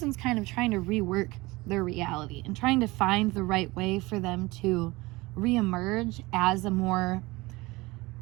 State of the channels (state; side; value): quieter; left; 21.9 dB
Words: kind of trying to rework their reality and trying to find the right way for them to reemerge as a more,